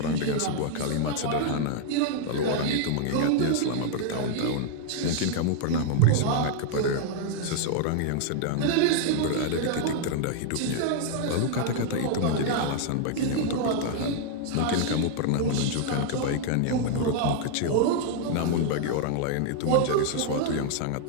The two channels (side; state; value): both; different; correlation 0.00